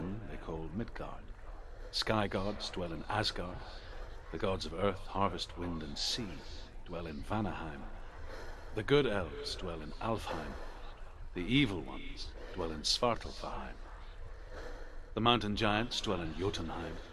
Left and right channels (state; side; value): identical; both; correlation 1.00